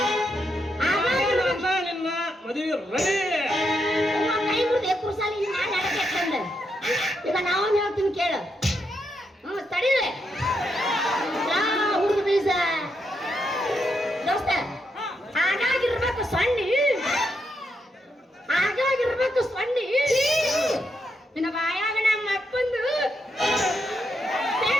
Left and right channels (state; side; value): normal; both; correlation 0.81